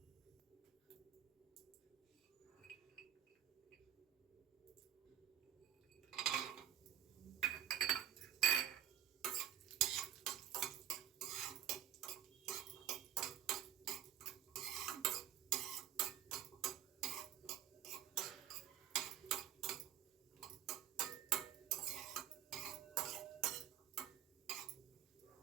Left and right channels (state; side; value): quieter; left; 10.5 dB